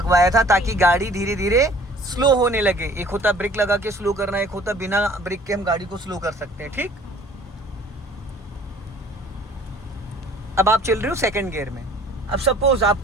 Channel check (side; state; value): both; normal; correlation 0.52